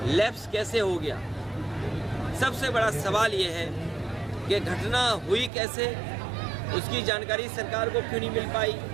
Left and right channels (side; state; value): left; drops out; at 5.5 s